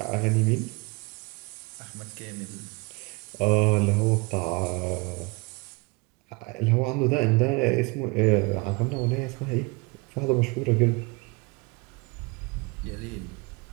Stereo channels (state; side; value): quieter; left; 27.4 dB